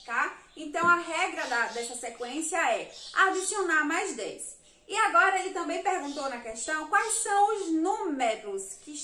tá? Então, a regra dessa sequência é adicionar mais 10. E agora, ele também perguntou na questão quais são os números que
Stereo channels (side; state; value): both; identical; correlation 1.00